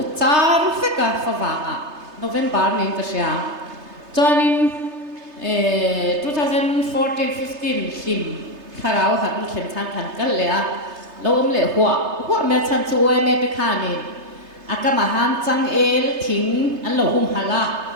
char fe ka fa wa a November nin ka sia chonin 2014-15 him kharau han khen thang khan kal le a lo le hua me chan chu oi me te kha ni akama han chang el thing an lo hum hala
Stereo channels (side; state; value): left; late; 3.3 ms